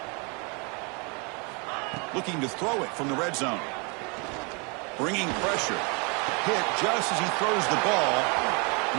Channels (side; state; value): left; quieter; 32.5 dB